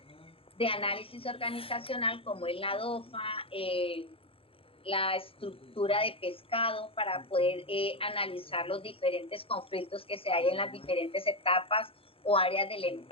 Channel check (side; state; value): right; late; 0.27 ms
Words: de análisis organizacional como es la DOFA, la estructura de pescado para poder analizar los diferentes conflictos que se hay en las diferentes etapas o áreas de la